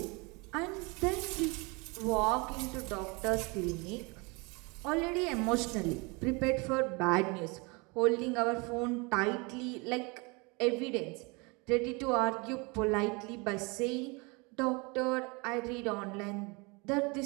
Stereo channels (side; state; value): left; quieter; 28.6 dB